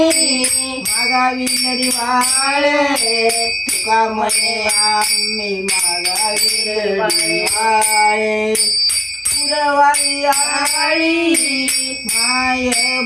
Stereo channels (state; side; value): noise; right; hum, 30 dB below the sound